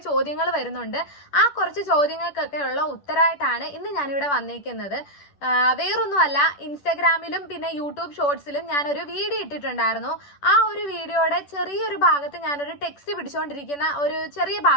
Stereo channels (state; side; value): late; right; 10 ms